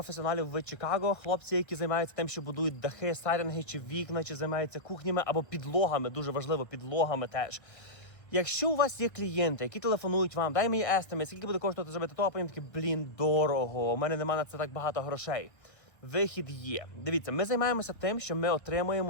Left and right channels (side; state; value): right; late; 1.2 ms